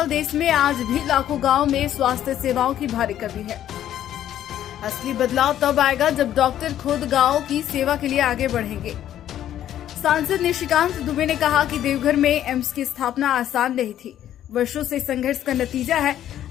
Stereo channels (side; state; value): right; quieter; 11.4 dB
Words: देश में आज भी लाखों गांव में स्वास्थ्य सेवाओं की भारी कमी है। असली बदलाव तब आएगा जब डॉक्टर खुद गांव की सेवा के लिए आगे बढ़ेंगे। सांसद निशिकांत दुबे ने कहा कि देवघर में एम्स की स्थापना आसान नहीं थी, वर्षों से संघर्ष का नतीजा है।